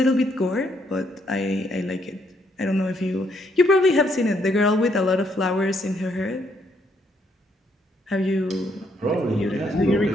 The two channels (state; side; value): normal; both; correlation 0.72